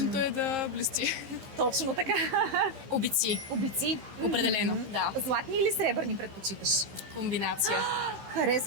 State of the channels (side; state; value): left; late; 15 ms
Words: е да блести. Точно така. Обици. Обици? Определено, да. Златни или сребърни предпочиташ? Комбинация.